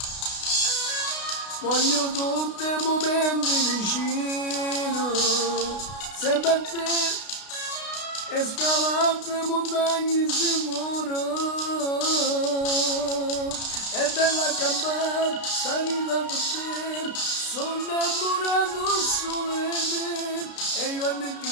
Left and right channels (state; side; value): late; right; 32 ms